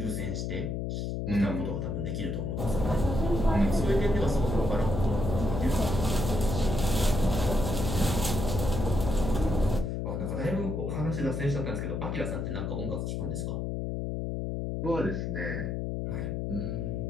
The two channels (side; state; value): left; noise; hum, 2 dB below the sound